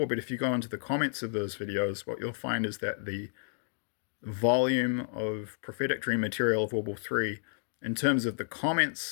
but if you go into the comments of those videos, what you'll find is that the volume of prophetic dream material of World War III, in terms of the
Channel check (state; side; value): silent; right; digital silence